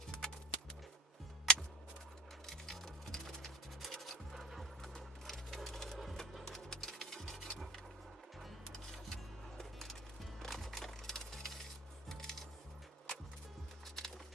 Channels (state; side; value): normal; both; correlation 0.42